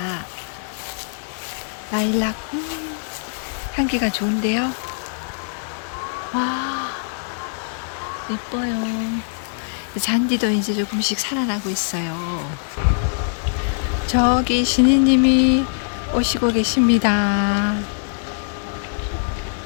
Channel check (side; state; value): right; silent; 59 dB below the other